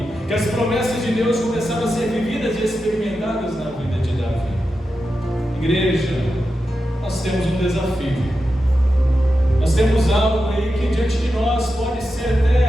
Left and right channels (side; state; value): both; normal; correlation 0.90